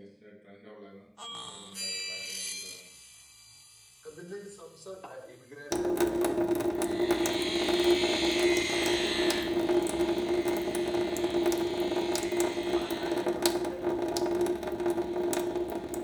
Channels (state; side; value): identical; both; correlation 1.00